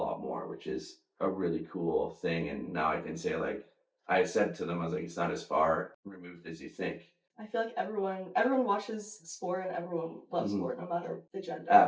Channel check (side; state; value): both; identical; correlation 1.00